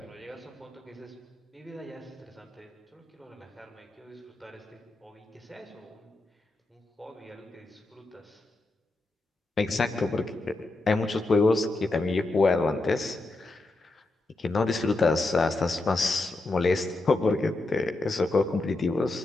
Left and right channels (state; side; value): quieter; right; 3.0 dB